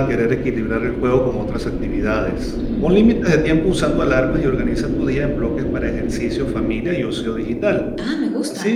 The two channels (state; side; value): identical; both; correlation 1.00